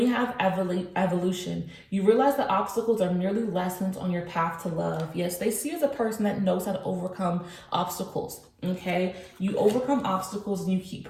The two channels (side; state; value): both; identical; correlation 1.00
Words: have evolution. You realize that obstacles are merely lessons on your path to love. Yes, they see you as a person that knows how to overcome obstacles. Okay, you overcome obstacles and you keep